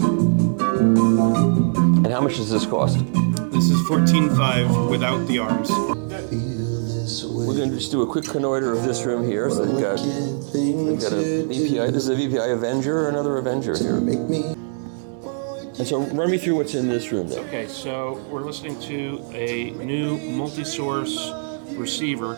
how much does this cost? This is $14,500 without the arms. We're going to just do a quick connoiter of this room here. So they've got a VPI. This is a VPI Avenger or another Avenger here. And so run me through what's in this room then. Okay, so we're listening to a new multi-source receiver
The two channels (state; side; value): silent; left; 64 dB below the other